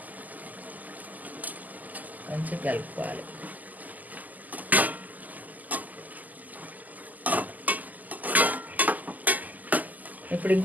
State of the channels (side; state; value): left; late; 0.081 ms